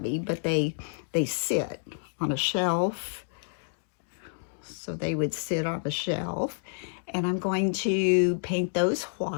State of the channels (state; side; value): silent; right; digital silence